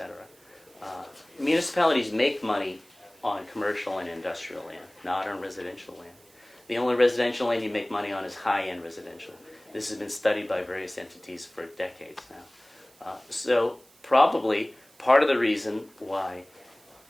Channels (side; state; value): right; noise; hiss, 28 dB below the sound